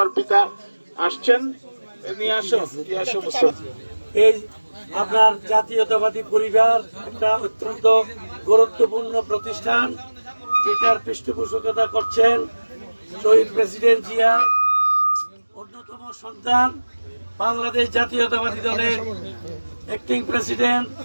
পিতা আসছেন। এই আপনার জাতীয়তাবাদী পরিবার একটা অত্যন্ত গুরুত্বপূর্ণ প্রতিষ্ঠান, যেটার পৃষ্ঠপোষকতা করছেন শহীদ প্রেসিডেন্ট জিয়া অন্যতম সন্তান, বাংলাদেশ জাতীয়তাবাদী দলের অ্যাক্টিং প্রেসিডেন্ট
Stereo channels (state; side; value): inverted; both; correlation -1.00